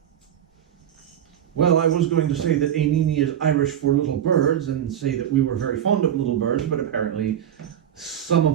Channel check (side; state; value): left; quieter; 10.0 dB